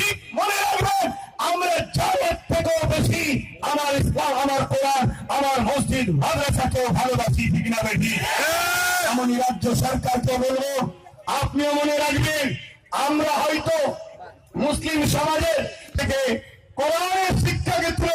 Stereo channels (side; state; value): both; identical; correlation 1.00